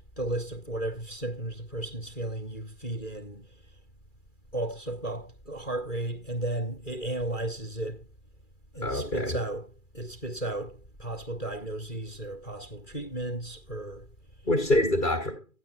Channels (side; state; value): right; late; 2.4 ms